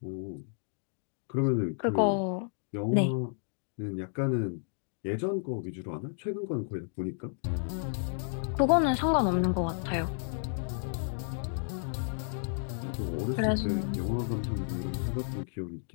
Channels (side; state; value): right; silent; digital silence